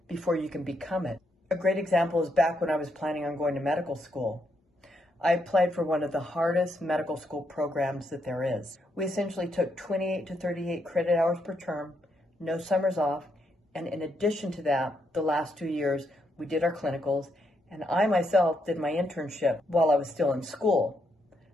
before you can become it. A great example is back when I was planning on going to medical school. I applied for one of the hardest medical school programs that there is. We essentially took 28 to 38 credit hours per term, no summers off, and in addition to that, the last 2 years, we did our clinicals, and I myself did my internship while I was still in school.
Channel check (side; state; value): both; normal; correlation 0.78